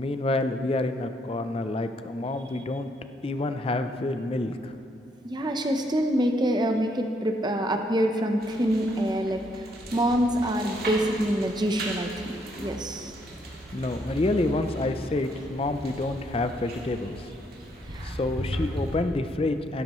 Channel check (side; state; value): both; normal; correlation 0.72